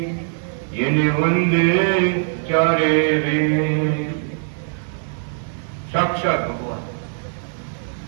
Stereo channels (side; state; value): left; silent; digital silence